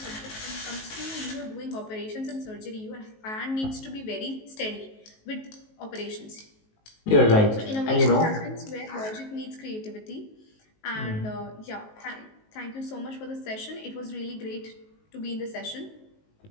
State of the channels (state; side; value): late; right; 19 ms